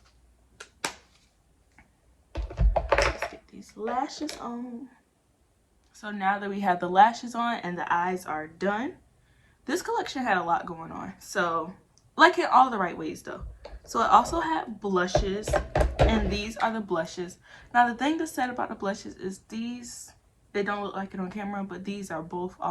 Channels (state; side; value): identical; both; correlation 1.00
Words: Let's get these lashes on. So now that we have the lashes on and the eyes are done, this collection had a lot going on. So, like in all the right ways though. So it also had blushes, and these are the blushes. Now the thing that's sad about the blushes is these, they don't look like it on camera, but these are both